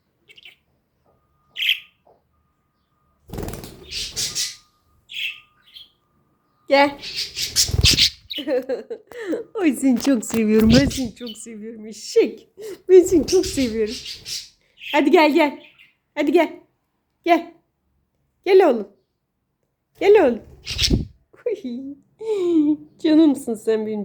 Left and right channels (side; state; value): both; identical; correlation 1.00